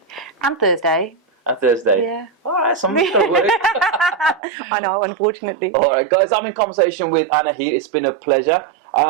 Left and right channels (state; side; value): drops out; left; at 4.4 s